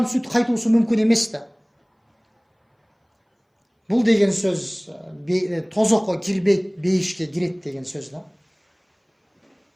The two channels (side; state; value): both; identical; correlation 1.00